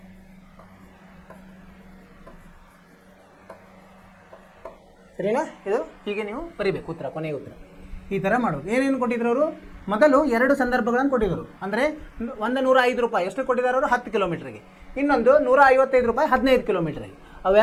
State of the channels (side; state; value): both; identical; correlation 1.00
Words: ಸರಿನಾ? ಇದು ಹೀಗೆ ನೀವು ಬರೀಬೇಕು ಉತ್ತರ, ಕೊನೆಯ ಉತ್ತರ ಈ ಥರ ಮಾಡೋದು. ಏನೇನು ಕೊಟ್ಟಿದ್ರು ಅವರು? ಮೊದಲು 2 ಸಂದರ್ಭಗಳನ್ನು ಕೊಟ್ಟಿದ್ದರು. ಅಂದರೆ 105 ರೂಪಾಯಿ ಎಷ್ಟು ಕೊಟ್ಟಿದ್ದಾರೆ ಅವರು? 10 ಕಿಲೋಮೀಟ್ರಿಗೆ. ಇನ್ನೊಂದು 155 ರೂಪಾಯಿ 15 ಕಿಲೋಮೀಟ್ರಿಗೆ.